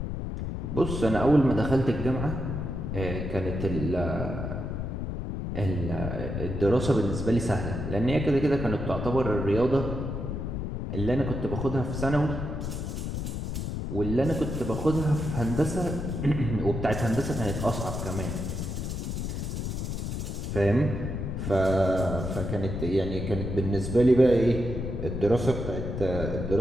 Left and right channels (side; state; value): left; noise; rumble, 4 dB below the sound